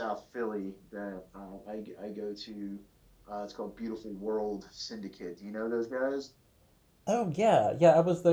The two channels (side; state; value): both; identical; correlation 1.00